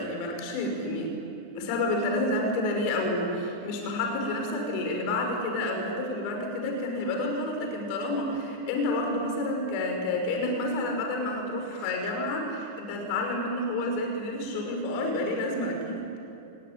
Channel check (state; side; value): late; right; 9.9 ms